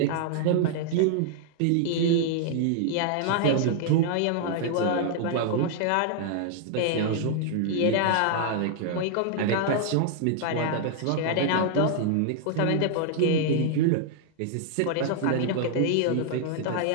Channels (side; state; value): both; different; correlation 0.00